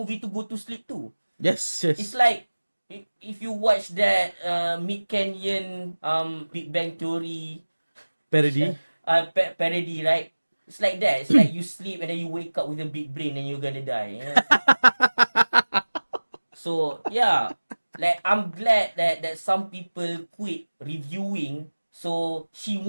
to go to sleep too. Yes. It's like if you watch that Mid Canyon Big Bang Theory Parody. parody, right? It's like that. It's like you sleep and then you wake up with a big brain and you're gonna die. So yeah, like I'm glad that some people quit reviewing, so she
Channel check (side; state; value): both; inverted; correlation -1.00